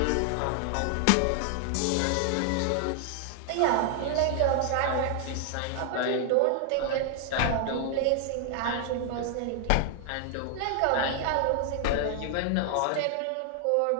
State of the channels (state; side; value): different; both; correlation 0.00